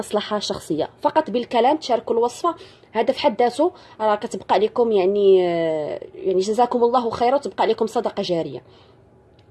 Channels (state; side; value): identical; both; correlation 1.00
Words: شخصية، فقط بالكلام تشاركوا الوصفة. هذا في حد ذاته راه كتبقى لكم يعني جزاكم الله خيرا، وتبقى لكم صدقة جارية